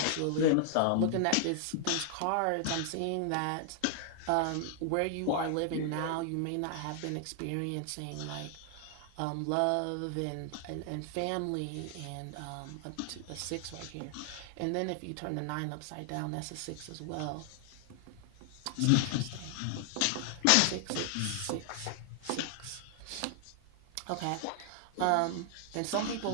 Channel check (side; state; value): both; different; correlation 0.00